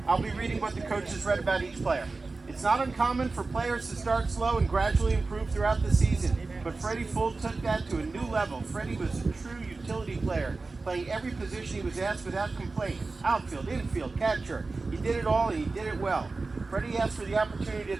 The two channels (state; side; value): quieter; left; 3.7 dB